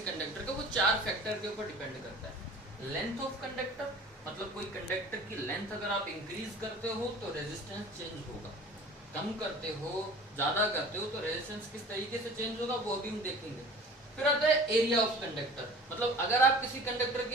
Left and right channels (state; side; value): normal; both; correlation 0.43